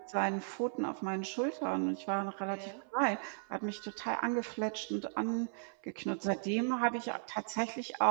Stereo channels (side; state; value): left; silent; 54 dB below the other